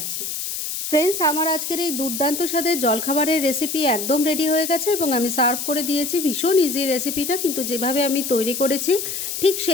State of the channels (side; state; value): left; noise; hiss, 4 dB below the sound